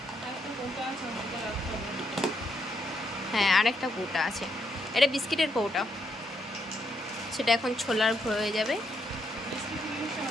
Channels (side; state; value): both; normal; correlation 0.77